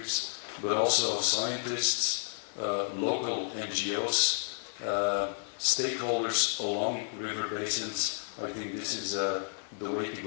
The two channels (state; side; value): silent; right; 57 dB below the other